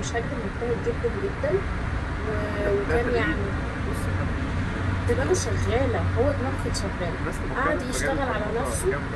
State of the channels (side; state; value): both; identical; correlation 1.00